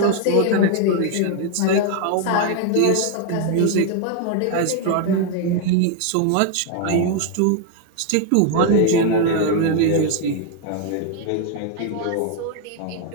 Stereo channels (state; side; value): different; both; correlation 0.01